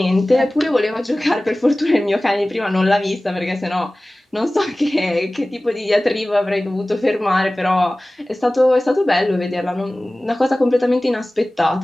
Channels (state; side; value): normal; both; correlation 0.98